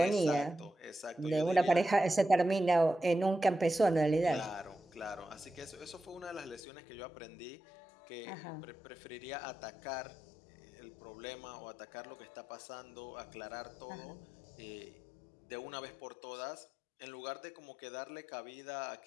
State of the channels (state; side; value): drops out; right; at 6.6 s